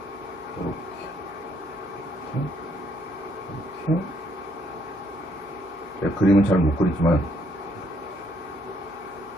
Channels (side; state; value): both; normal; correlation 0.70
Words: 이렇게 그림은 잘 못 그리지만